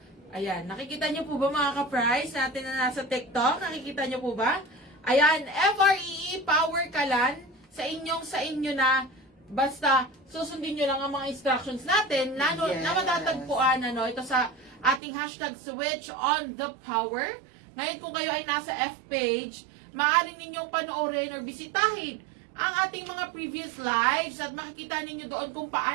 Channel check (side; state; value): left; drops out; at 15.0 s